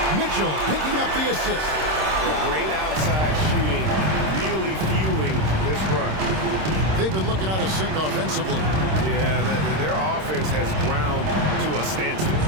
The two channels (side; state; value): left; late; 26 ms